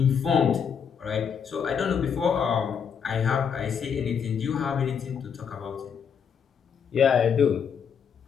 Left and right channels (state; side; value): quieter; right; 7.1 dB